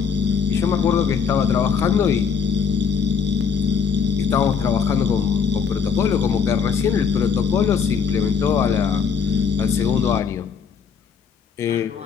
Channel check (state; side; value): quieter; right; 6.2 dB